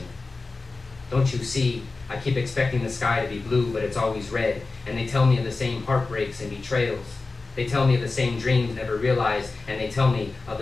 "Don't you see, I keep expecting the sky to be blue, but it's always red, and they tell me of the same heartbreaks and betrayals. They tell me of the same dreams never realized, and they tell me of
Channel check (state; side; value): quieter; right; 3.7 dB